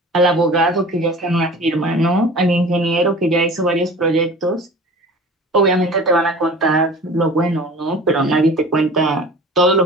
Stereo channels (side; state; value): both; normal; correlation 0.41